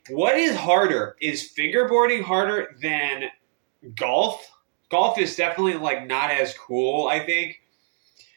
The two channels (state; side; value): silent; left; digital silence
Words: what is harder? Is fingerboarding harder than golf? Golf is definitely like not as cool, I think.